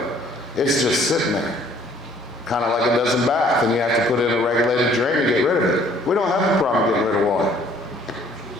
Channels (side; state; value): both; normal; correlation 0.59